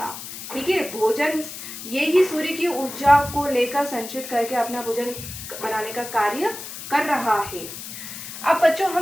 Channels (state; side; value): noise; left; hiss, 10 dB below the sound